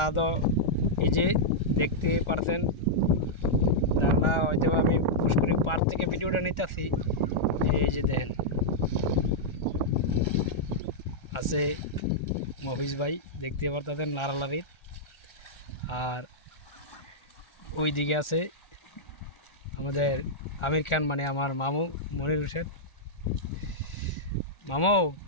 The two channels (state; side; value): late; right; 1.4 ms